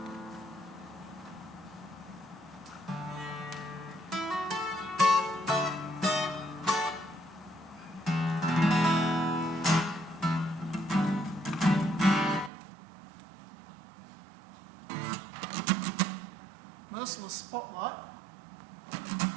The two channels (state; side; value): drops out; left; at 12.5 s